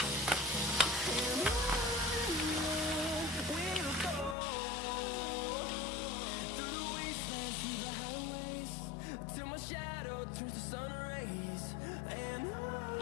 Till my shadow turns to sun rays, and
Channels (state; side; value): drops out; right; at 4.4 s